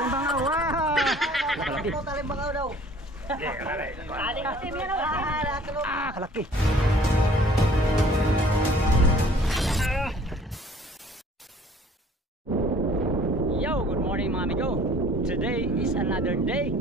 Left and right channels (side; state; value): both; normal; correlation 0.53